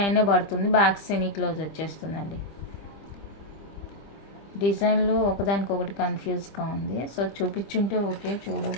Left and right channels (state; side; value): late; right; 25 ms